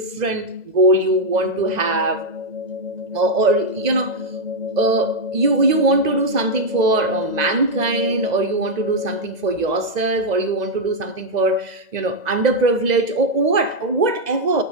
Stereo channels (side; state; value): left; late; 2.0 ms